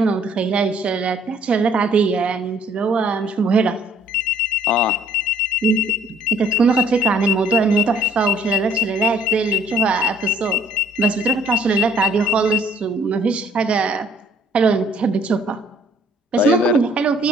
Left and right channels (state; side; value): normal; both; correlation 0.60